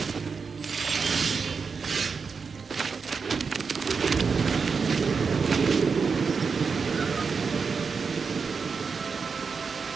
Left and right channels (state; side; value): quieter; left; 5.3 dB